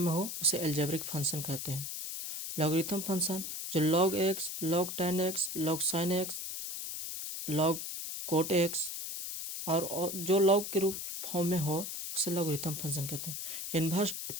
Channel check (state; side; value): noise; left; hiss, 6 dB below the sound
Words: हो उसे एल्जेब्रिक फंक्शन कहते हैं। लॉगरिथम फंक्शन जो log x, log tan x, log sin x, log cot x और जो log के रूप फॉर्म में हो उसे लॉगरिथम फंक्शन कहते हैं। इन्वर्स